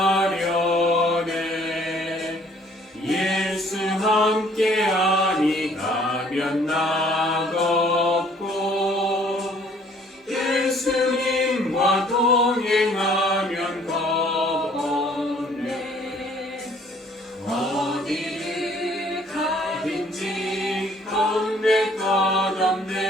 예수 함께 아니 가면 나갑고 예수님과 동행하면 겁 없네. 어디를 가든지 겁낼 것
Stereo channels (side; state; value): both; normal; correlation 0.59